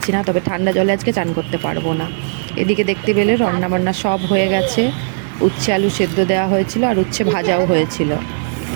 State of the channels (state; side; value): silent; left; digital silence